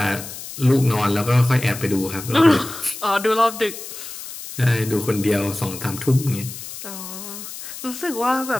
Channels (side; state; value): left; noise; hiss, 11 dB below the sound